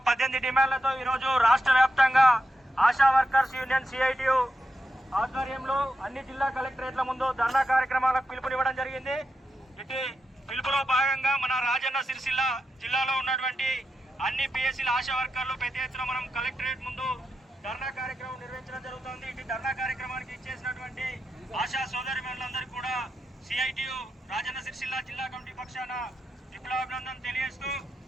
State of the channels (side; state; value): both; normal; correlation 0.87